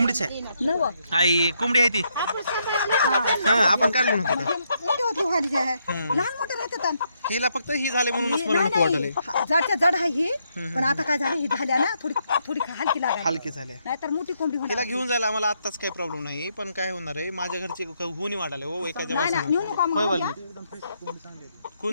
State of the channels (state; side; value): inverted; both; correlation -0.77